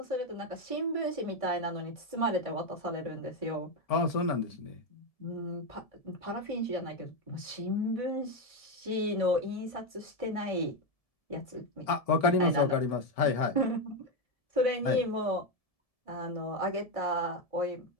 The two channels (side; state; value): right; late; 1.7 ms